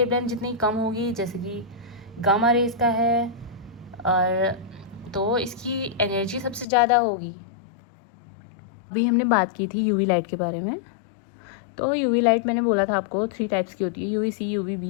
जितनी कम होगी, जैसे कि गामा रेज का है, और तो इसकी एनर्जी सबसे ज़्यादा होगी। अभी हमने बात की थी यूवी लाइट के बारे में। तो यूवी लाइट मैंने बोला था आपको 3 टाइप्स की होती है, UV C, UV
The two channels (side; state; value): right; drops out; at 6.7 s